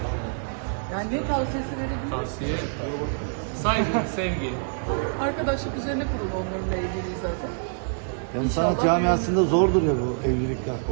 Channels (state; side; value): silent; left; digital silence